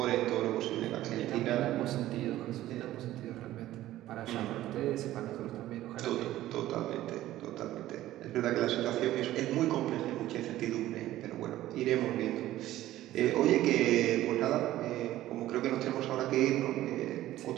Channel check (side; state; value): left; quieter; 14.6 dB